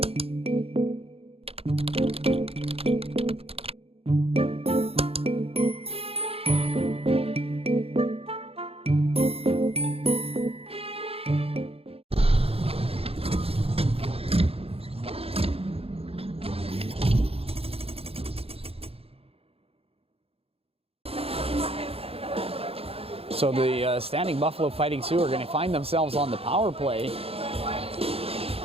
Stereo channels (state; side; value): late; left; 0.28 ms